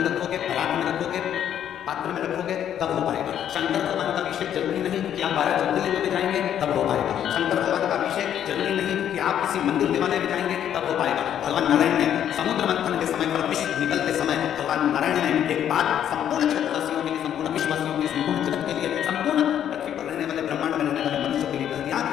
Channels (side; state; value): right; quieter; 10.0 dB